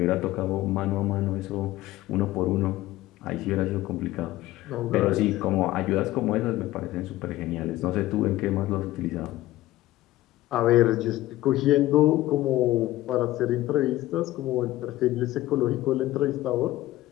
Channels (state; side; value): quieter; right; 16.3 dB